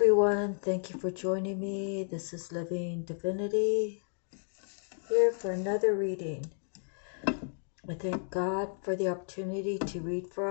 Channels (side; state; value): right; silent; digital silence